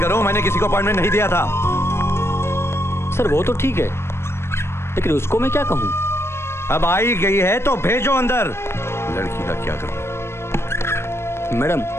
मैंने किसी को अपॉइंटमेंट नहीं दिया था। सर वो तो ठीक है, लेकिन उसको मैं क्या कहूँ? अब आई गई है तो भेजो अंदर। लड़की का क्या करूं? मैडम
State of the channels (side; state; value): right; late; 0.12 ms